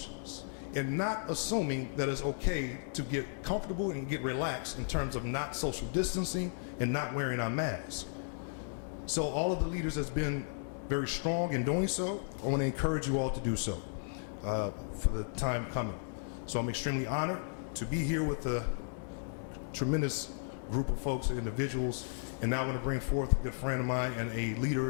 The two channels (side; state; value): right; silent; digital silence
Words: and not assuming that it's okay to get comfortable and get relaxed in terms of not social distancing and not wearing our mask. So all of the leaders that's been very strong in doing so, I want to encourage you all to do so for the time coming. So I'm extremely honored to be here with a tremendous group of folks and individuals, and now I want to bring forth a good friend of mine and a